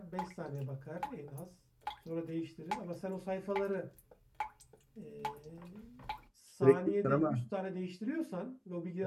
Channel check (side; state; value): both; identical; correlation 1.00